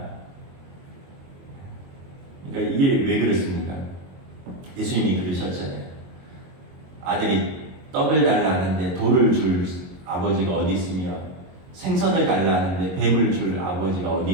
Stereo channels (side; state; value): left; late; 22 ms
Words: 그러니까 이게 왜 그렇습니까? 예수님이 그러셨잖아요. 아들이 떡을 달라는데 돌을 줄 아버지가 어디 있으며 생선을 달라는데 뱀을 줄 아버지가 어디